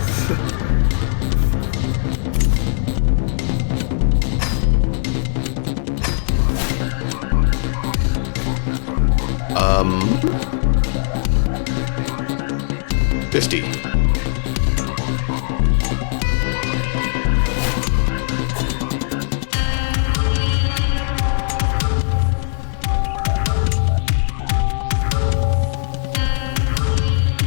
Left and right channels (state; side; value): silent; right; digital silence